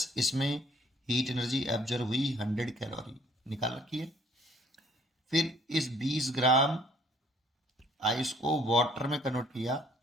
इसमें हीट एनर्जी एब्जॉर्व हुई 100 कैलोरी, निकाल रखी है। फिर इस 20 ग्राम आइस को वाटर में कन्वर्ट किया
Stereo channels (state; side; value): normal; both; correlation 0.60